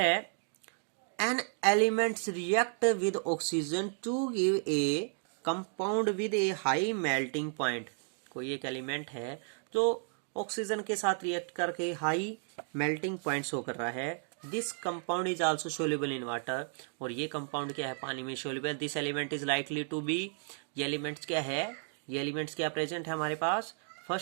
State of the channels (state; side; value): silent; left; 56 dB below the other